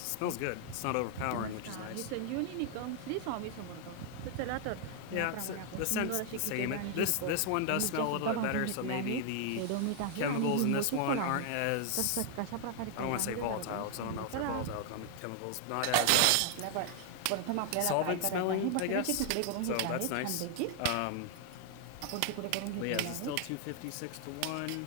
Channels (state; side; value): different; both; correlation 0.00